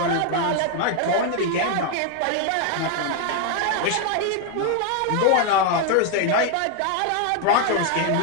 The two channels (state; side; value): different; both; correlation 0.01